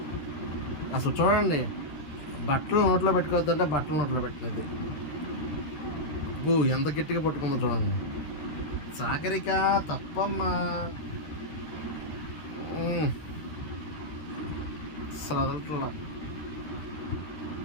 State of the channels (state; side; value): late; right; 13 ms